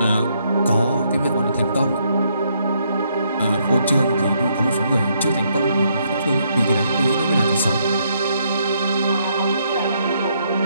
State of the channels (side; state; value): both; inverted; correlation -0.73